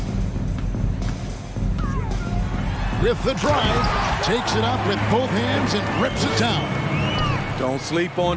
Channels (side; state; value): both; identical; correlation 1.00